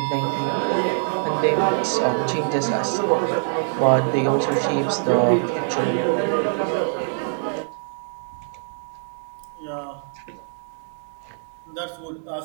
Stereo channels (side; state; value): left; silent; digital silence